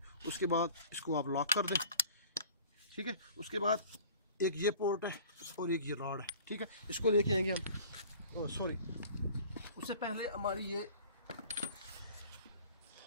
उसके बाद इसको आप लॉक कर दें। ठीक है, उसके बाद एक ये पोर्ट है और एक ये रॉड है। ठीक है, इसको लेके आएंगे हम, सॉरी उससे पहले हमारी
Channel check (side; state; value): both; inverted; correlation -0.46